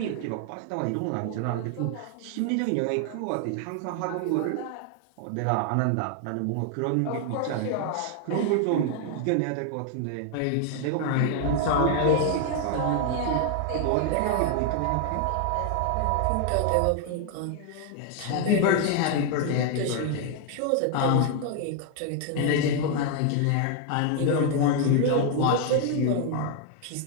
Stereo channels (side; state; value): both; different; correlation 0.00